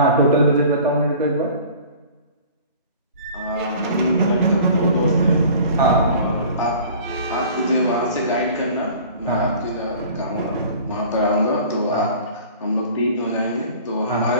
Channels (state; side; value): inverted; both; correlation -0.45